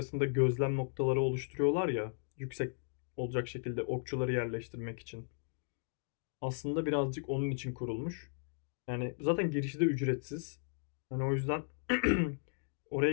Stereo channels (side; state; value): right; silent; digital silence